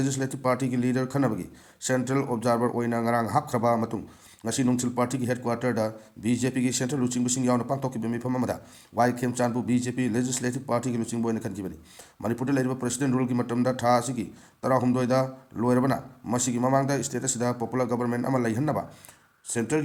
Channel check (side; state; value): both; identical; correlation 1.00